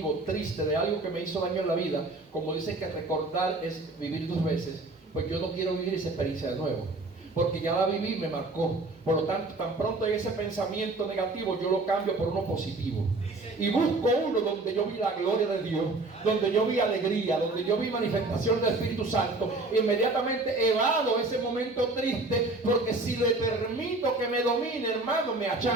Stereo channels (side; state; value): left; quieter; 3.1 dB